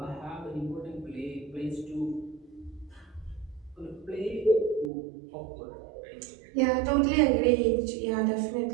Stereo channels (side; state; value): left; drops out; at 4.9 s